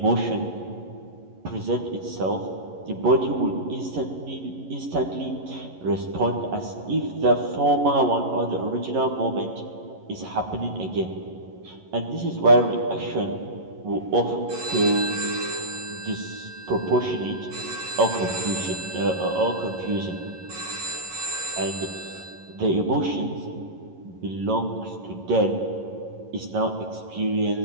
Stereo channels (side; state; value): left; late; 11 ms